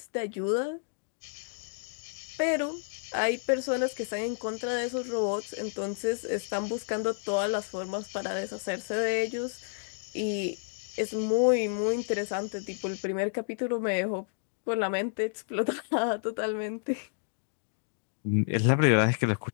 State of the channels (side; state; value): right; silent; digital silence